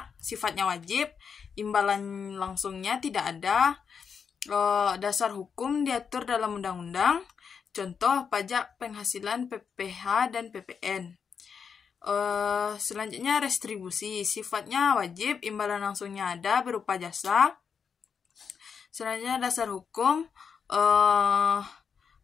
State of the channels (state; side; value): quieter; right; 6.4 dB